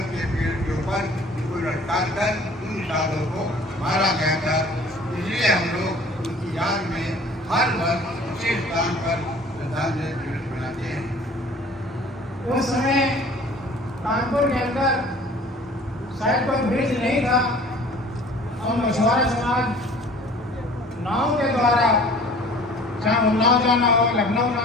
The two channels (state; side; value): normal; both; correlation 0.49